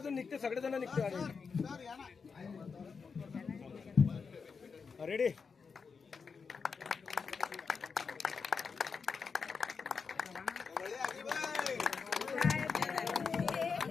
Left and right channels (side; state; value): right; quieter; 5.4 dB